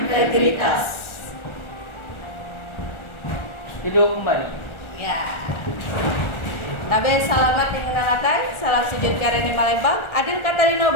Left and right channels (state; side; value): late; right; 1.4 ms